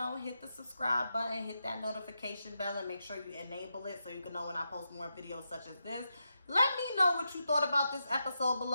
the subscribe button, hit that notification bell, and make sure you enable it so you can know when I post more videos such as this. Let me know what you thought about this episode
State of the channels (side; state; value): both; inverted; correlation -0.86